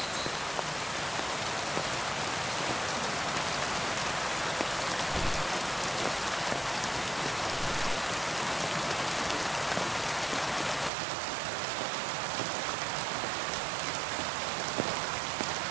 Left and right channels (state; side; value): drops out; left; at 10.9 s